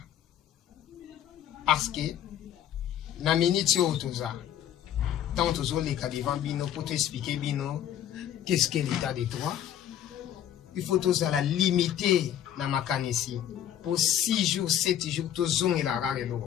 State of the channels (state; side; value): quieter; right; 10.6 dB